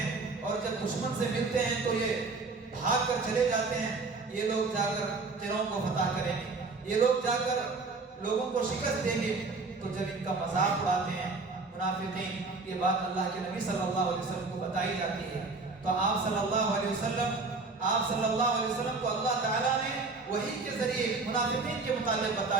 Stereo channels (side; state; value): left; quieter; 3.8 dB